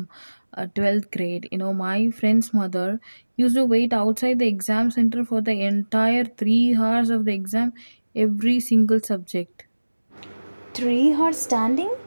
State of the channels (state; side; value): inverted; both; correlation -1.00